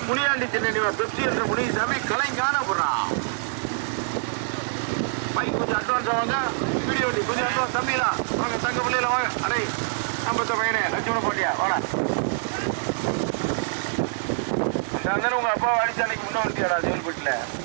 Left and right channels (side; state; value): left; silent; digital silence